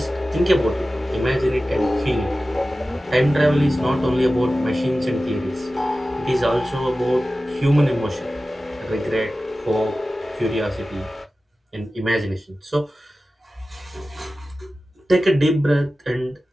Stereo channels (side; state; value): both; normal; correlation 0.95